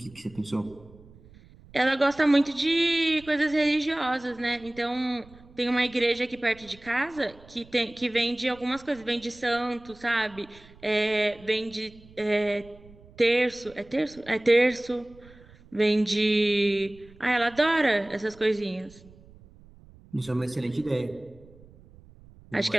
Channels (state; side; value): noise; right; rumble, 24 dB below the sound